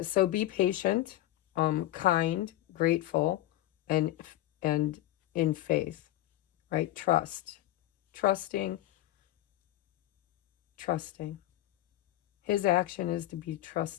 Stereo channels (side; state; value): right; quieter; 14.9 dB